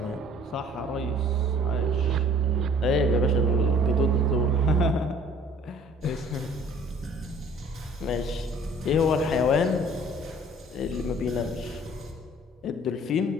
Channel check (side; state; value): both; normal; correlation 0.52